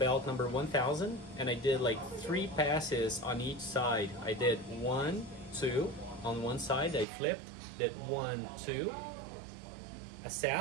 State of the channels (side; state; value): left; drops out; at 7.1 s